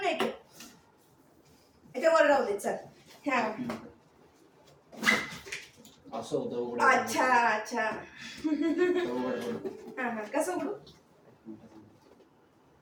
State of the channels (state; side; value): identical; both; correlation 1.00